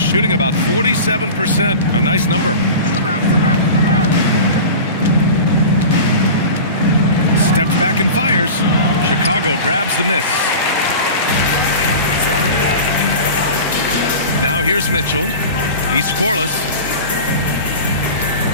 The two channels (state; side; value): inverted; both; correlation -0.33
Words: about 47%. A nice number. Steps back and fires. Chicago grabs the miss. Now here's Mitchell. He's scoreless.